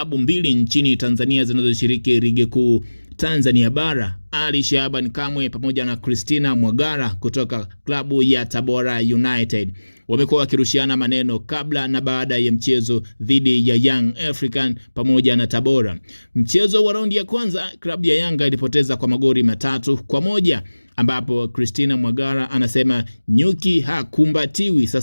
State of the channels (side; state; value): both; inverted; correlation -1.00